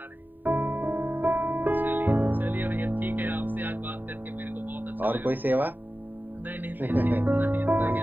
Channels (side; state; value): left; late; 0.090 ms